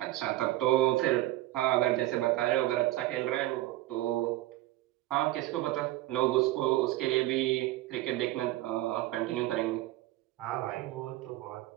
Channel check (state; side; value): quieter; left; 16.4 dB